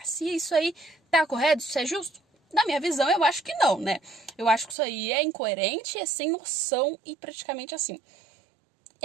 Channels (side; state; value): left; drops out; at 4.8 s